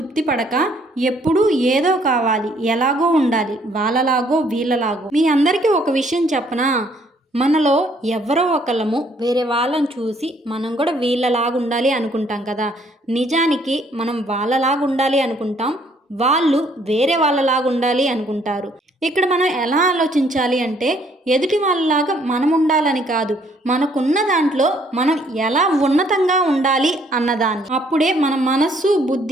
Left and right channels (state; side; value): normal; both; correlation 0.65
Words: పడక ఎప్పుడూ ఏదో కావాలి, ఎలాగో ఉండాలి, వాళ్ళలాగో వీళ్ళలాగో. మీ అందరికీ ఒక విషయం చెప్పనా? మనలో ఎవరో ఒకళ్ళము వేరే వాళ్ళని చూసి మనం కూడా వీళ్ళలాగా ఉండాలి అనుకుంటాం కదా. నిజానికి మనం వాళ్ళలాగా ఉండాలి అనుకుంటాం, వాళ్ళు వేరే వాళ్ళలాగా ఉండాలి అనుకుంటారు. ఇక్కడ మనం ఎలా ఆలోచించాలి అంటే ఎదుటి వాళ్ళలాగా మనం ఉండాలని కాదు, మనకున్న దాంట్లో మనం ఎలా ఉన్నతంగా ఉండాలి అన్నదాన్ని. అప్పుడే మన మనస్సు